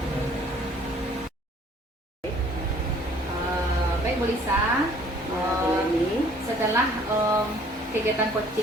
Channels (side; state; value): both; normal; correlation 0.57